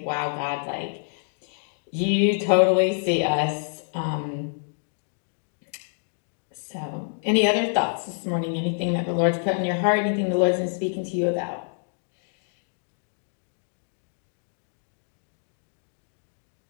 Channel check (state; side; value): silent; right; digital silence